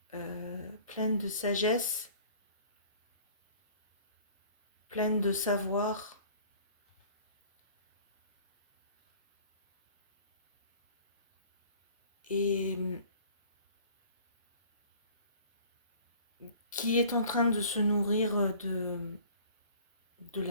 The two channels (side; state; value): both; inverted; correlation -0.49